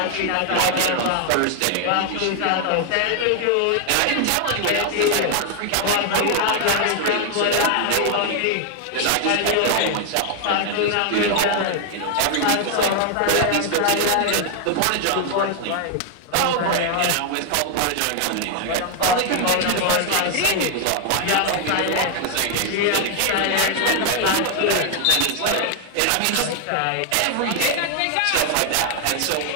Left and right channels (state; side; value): different; both; correlation 0.00